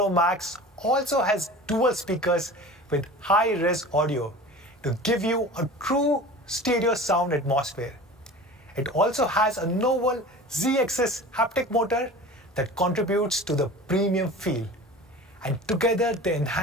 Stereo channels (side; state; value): both; normal; correlation 0.38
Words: Max also has dual speakers with high-res audio to give you a true stereo sound atmosphere. It also has a novel Z-axis haptic motor that contributes to the premium feel. And together they